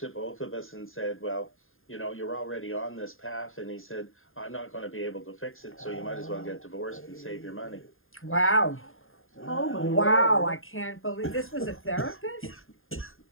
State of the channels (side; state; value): right; late; 0.60 ms